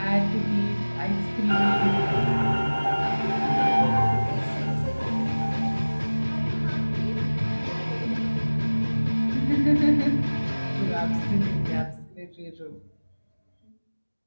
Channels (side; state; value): both; inverted; correlation -1.00